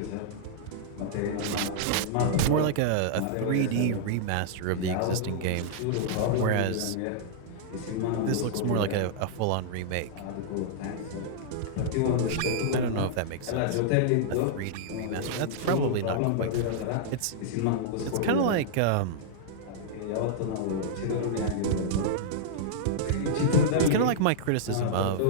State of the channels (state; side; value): different; both; correlation -0.02